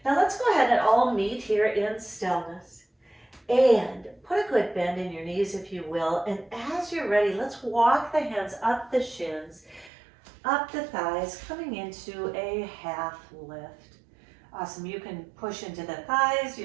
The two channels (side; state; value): left; drops out; at 9.9 s